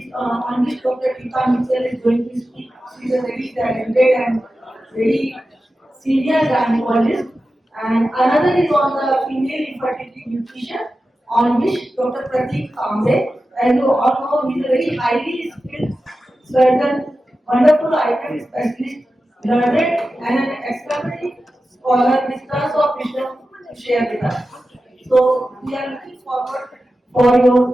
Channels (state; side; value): normal; both; correlation 0.93